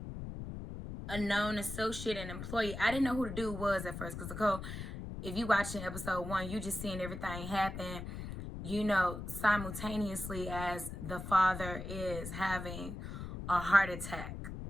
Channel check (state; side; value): noise; left; rumble, 8 dB below the sound